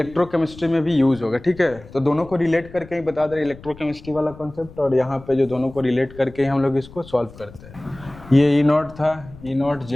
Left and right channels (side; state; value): left; noise; rumble, 19 dB below the sound